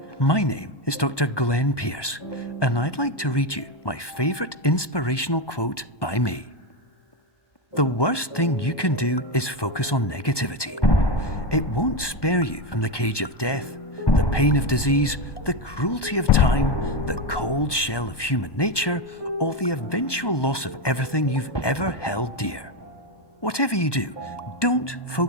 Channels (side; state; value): right; late; 1.2 ms